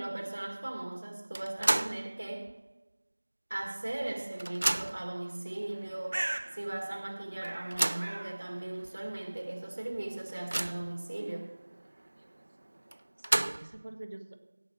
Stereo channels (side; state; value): both; inverted; correlation -1.00